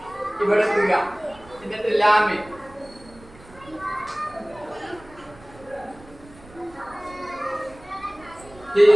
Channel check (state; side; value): noise; right; rumble, 23 dB below the sound